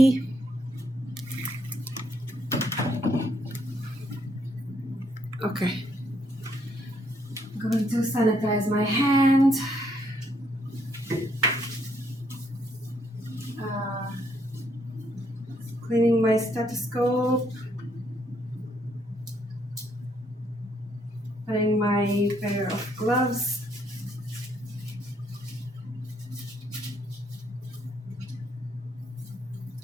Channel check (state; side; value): normal; both; correlation 0.71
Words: Okay. I'm going to sanitize my hand. Cleaning my stethoscope. Putting my pair of gloves.